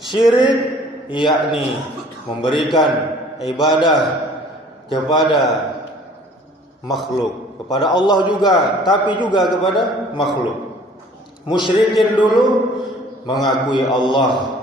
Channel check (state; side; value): normal; both; correlation 0.52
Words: yakni memberikan ibadah kepada makhluk, kepada Allah juga, tapi juga kepada makhluk. Musyrikin dulu mengakui Allah